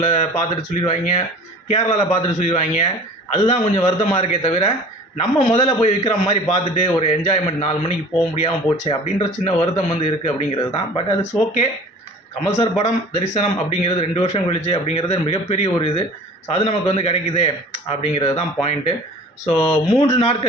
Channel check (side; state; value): both; normal; correlation 0.44